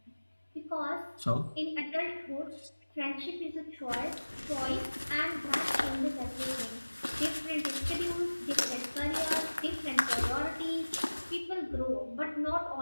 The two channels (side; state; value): both; inverted; correlation -1.00